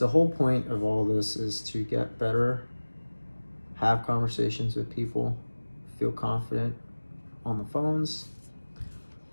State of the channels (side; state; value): both; inverted; correlation -1.00